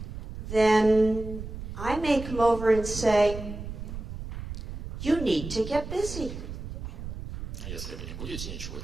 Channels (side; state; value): right; noise; rumble, 8 dB below the sound